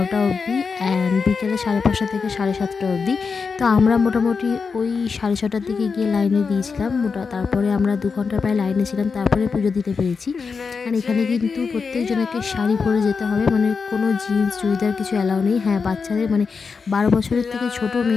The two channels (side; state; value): right; quieter; 5.2 dB